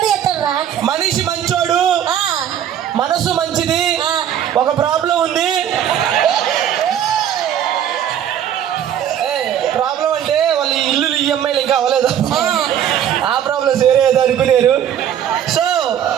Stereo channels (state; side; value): quieter; left; 9.9 dB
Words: ఎత్తారా? మనిషి మంచోడు, మనసు మంచిది. ఒక ప్రాబ్లం ఉంది. ప్రాబ్లం అంటే వాళ్ళ ఇల్లు ఈఎంఐలు ఇంకా అవ్వలేదు, ఆ ప్రాబ్లమ్స్ వేరే ఏదో అనుకునేరు. సో